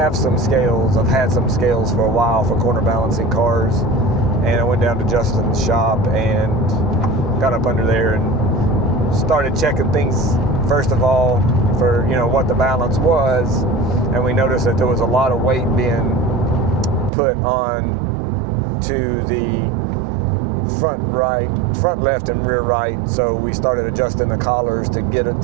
some scales. I've had some scales for a while for corner balancing cars, and I went down to Justin's shop and got up under there and started checking things first of all for what the balance was, and we noticed that there was a lot of weight being put on to the front left and rear right. So we started adjusting the collars to get it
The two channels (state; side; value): drops out; left; at 17.1 s